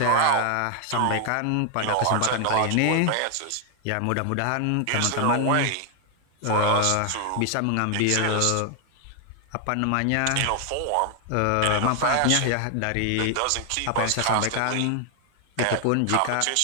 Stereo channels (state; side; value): different; both; correlation 0.00